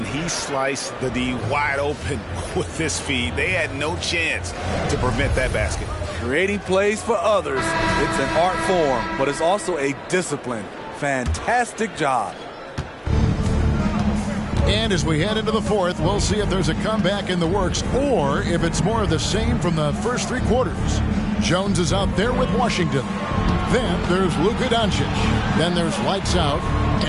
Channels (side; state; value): both; identical; correlation 1.00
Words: he sliced the D wide open with this feed. They had no chance to prevent that basket. Creating plays for others. It's an art form, but it's also a discipline. Fantastic job. And as we head into the fourth, we'll see if there's a comeback in the works or if it's more of the same from the first three quarters. Jones is out there with Washington. Then there's Luka Doncic. Then there's lights out,